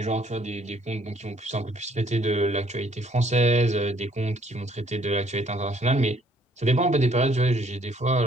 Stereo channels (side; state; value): both; normal; correlation 0.63